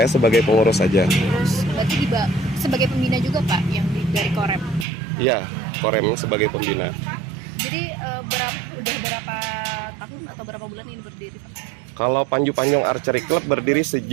sebagai pengurus saja. terus berarti sebagai pembina juga Pak yang dari Korem. Iya, Korem sebagai pembina. Jadi udah berapa tahun atau berapa bulan ini berdiri Pak? Kalau Panju Panjang Archery Club berdiri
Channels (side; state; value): left; drops out; at 4.9 s